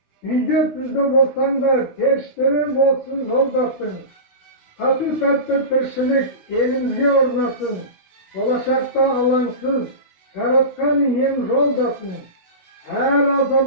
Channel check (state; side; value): late; right; 16 ms